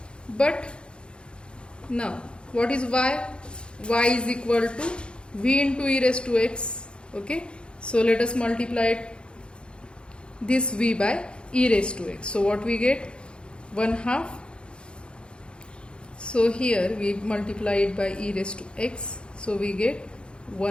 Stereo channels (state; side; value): late; right; 0.054 ms